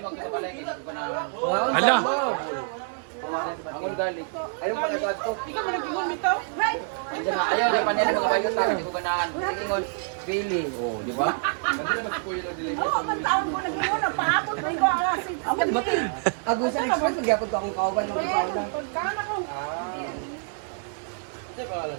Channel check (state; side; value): silent; left; 60 dB below the other